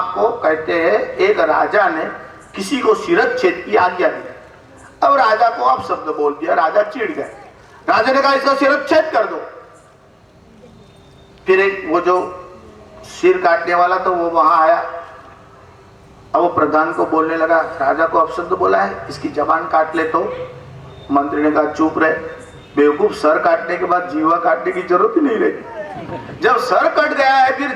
कहते हैं एक राजा ने किसी को शिरच्छेद की आज्ञा दी, अब राजा को आप शब्द बोल दिया, राजा चिढ़ गए। राजा ने कहा इसका शिरच्छेद कर दो। फिर एक वो जो सिर काटने वाला तो वो वहां आया, अब वो प्रधान को बोलने लगा, राजा को अपशब्द बोला है, इसकी जबान काट ले। तो मंत्री ने कहा चुप रहे, बेवकूफ, सर काटने के बाद जीवा काटने की जरूरत ही नहीं रहती। जब सर कट गया है फिर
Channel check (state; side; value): identical; both; correlation 1.00